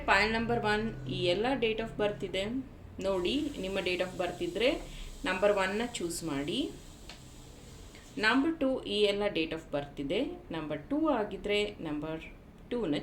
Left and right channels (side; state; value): both; identical; correlation 1.00